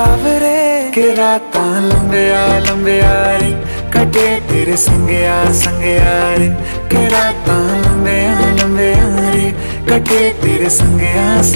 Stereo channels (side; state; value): both; inverted; correlation -1.00